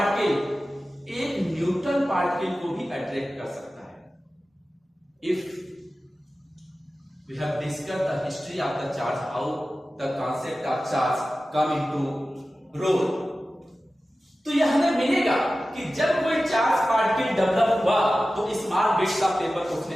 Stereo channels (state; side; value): normal; both; correlation 0.95